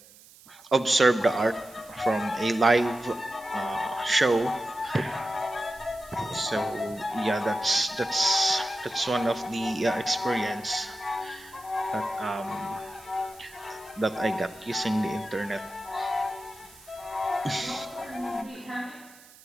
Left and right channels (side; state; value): right; noise; hiss, 23 dB below the sound